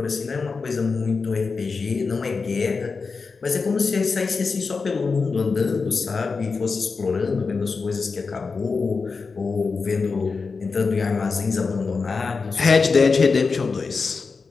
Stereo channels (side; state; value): right; quieter; 4.6 dB